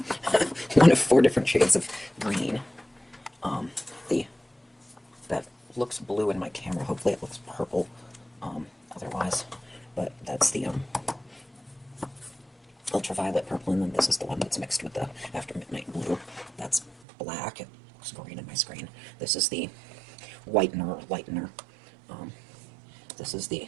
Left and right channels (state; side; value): drops out; left; at 16.9 s